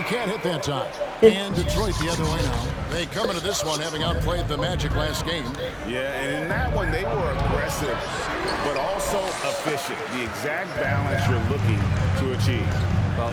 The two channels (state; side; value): identical; both; correlation 1.00